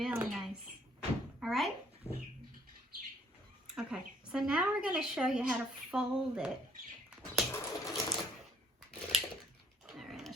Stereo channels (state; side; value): normal; both; correlation 0.63